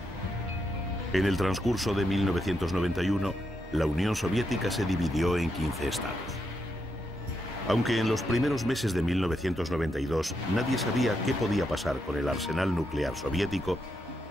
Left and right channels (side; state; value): both; normal; correlation 0.82